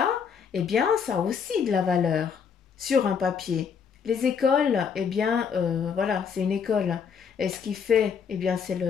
eh bien, ça a aussi de la valeur sur un papier. Les écoles, eh bien, voilà, c'est une école. Et ce qui fait, eh bien, c'est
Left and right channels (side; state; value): right; quieter; 6.7 dB